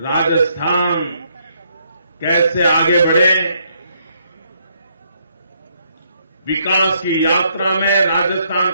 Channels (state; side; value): inverted; both; correlation -0.72